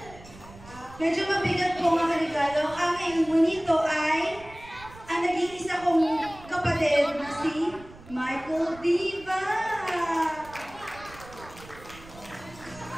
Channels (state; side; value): noise; right; rumble, 20 dB below the sound